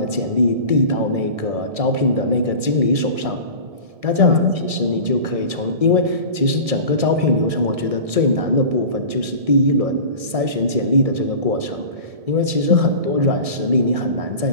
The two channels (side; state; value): left; late; 1.7 ms